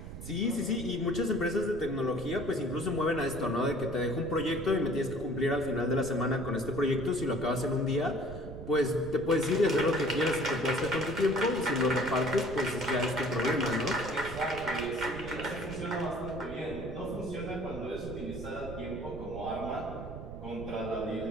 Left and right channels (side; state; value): right; noise; rumble, 10 dB below the sound